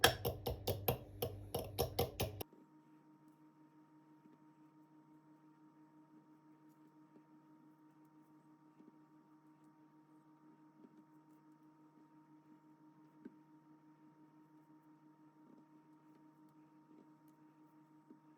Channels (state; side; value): identical; both; correlation 1.00